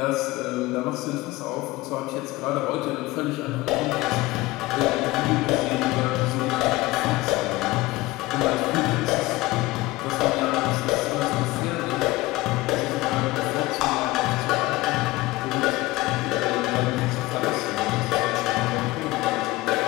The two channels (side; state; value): right; quieter; 19.7 dB